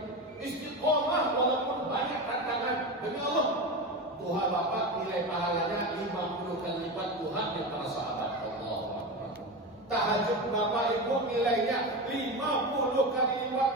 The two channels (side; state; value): both; normal; correlation 0.22